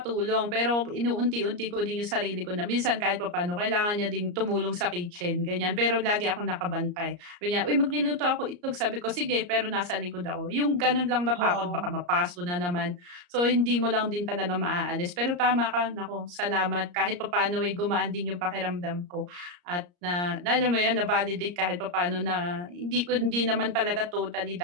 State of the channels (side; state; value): left; late; 34 ms